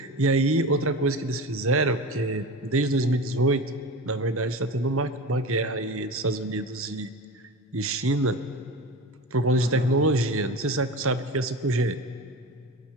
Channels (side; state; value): both; normal; correlation 0.29